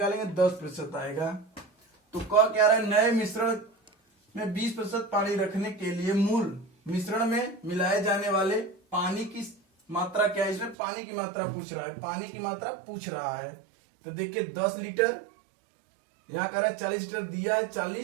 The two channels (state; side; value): drops out; left; at 10.8 s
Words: 10% आएगा। तो क्या रहा है, नए मिश्रण में 20% पानी रखने के लिए मूल मिश्रण में मिलाए जाने वाले पानी की मात्रा क्या है। इसमें पानी की मात्रा पूछ रहा है, पानी की मात्रा पूछ रहा है। तो देखिए 10 लीटर, यहाँ कह रहा है 40 लीटर दिया है